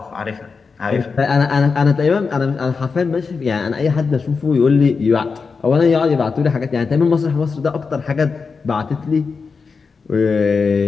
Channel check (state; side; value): quieter; right; 5.0 dB